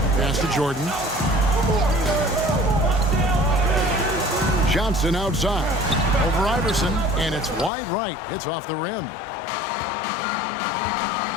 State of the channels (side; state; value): right; drops out; at 7.7 s